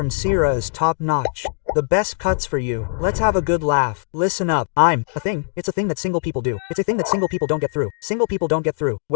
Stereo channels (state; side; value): silent; right; digital silence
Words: Sierra is top notch. The best cuts for you. Let's have a good laugh. Listen up. I'm a thing. It's a thing that single people do. It's a thing that single people don't get through. Single people don't get through.